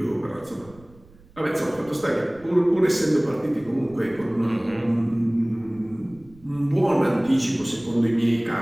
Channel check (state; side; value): noise; right; rumble, 25 dB below the sound